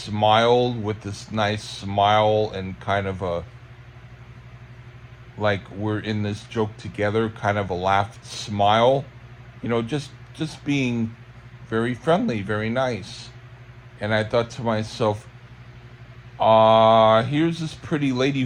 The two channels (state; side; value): identical; both; correlation 1.00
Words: with this nice smile and kind of a, like we're in this joke together, kind of a laughed smile, just being very friendly, very nice. And I thought to myself, here's this pretty lady